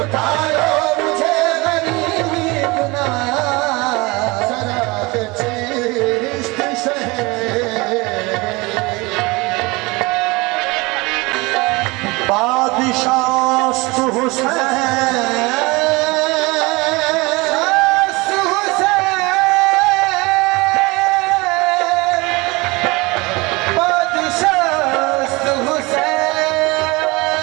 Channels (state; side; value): quieter; left; 24.5 dB